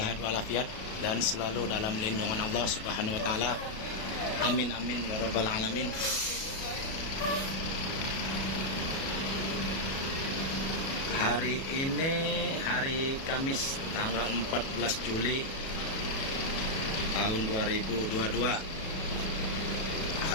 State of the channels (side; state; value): right; late; 37 ms